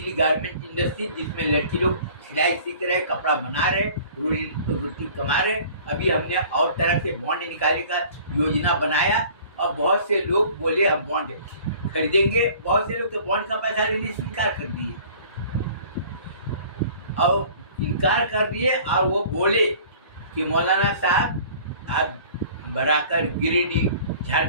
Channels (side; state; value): both; inverted; correlation -0.48